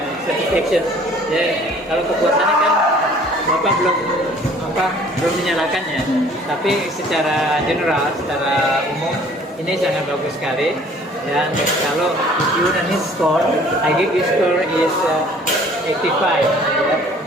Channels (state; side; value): normal; both; correlation 0.54